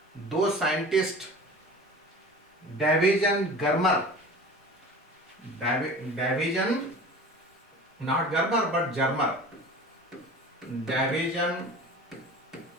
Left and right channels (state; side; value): normal; both; correlation 0.38